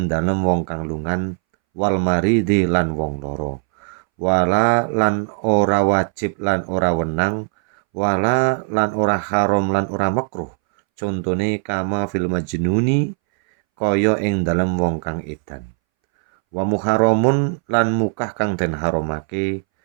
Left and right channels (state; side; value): silent; left; 64 dB below the other